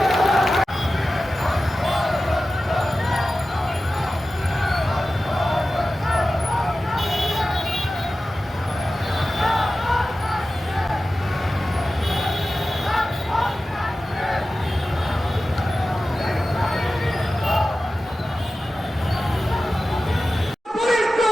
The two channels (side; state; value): both; normal; correlation 0.94